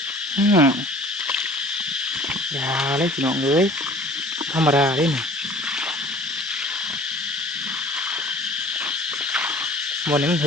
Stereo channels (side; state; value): both; normal; correlation 0.48